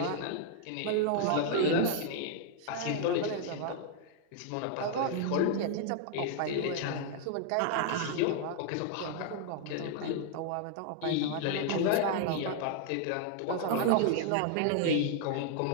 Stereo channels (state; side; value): different; both; correlation 0.00